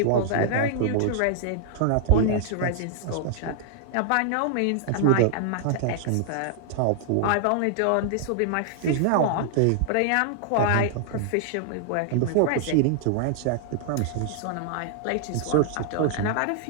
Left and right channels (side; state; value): both; different; correlation -0.01